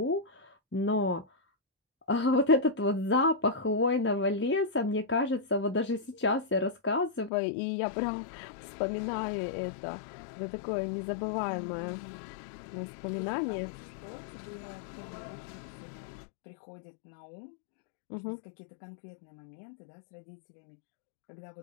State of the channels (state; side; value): drops out; right; at 7.3 s